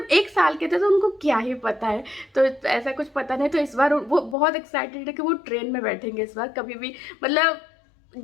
1 साल के थे तो उनको क्या ही पता है, तो ऐसा कुछ पता नहीं। तो इस बार वो बहुत एक्साइटेड है कि वो ट्रेन में बैठेंगे इस बार, कभी भी मतलब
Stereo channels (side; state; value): right; drops out; at 4.4 s